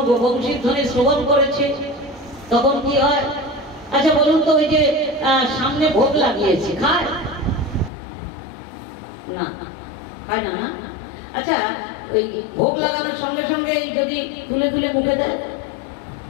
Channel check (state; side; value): drops out; right; at 7.9 s